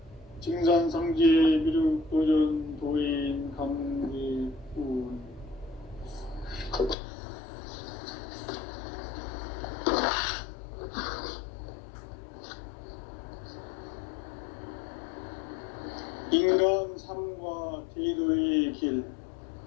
증산상제 미륵도전 도인 강대군. 인간 삶과 제도의 길.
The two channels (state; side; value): drops out; right; at 7.0 s